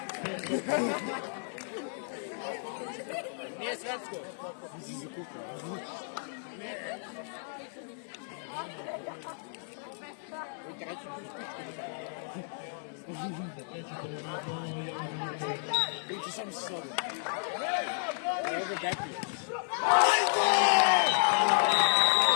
Nije svetsko. Si zakukao. Biće sam se sobi. Evo ga Bepi.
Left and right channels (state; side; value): silent; right; digital silence